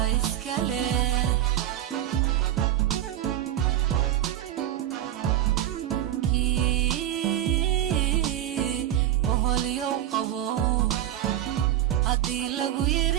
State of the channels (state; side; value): quieter; left; 12.4 dB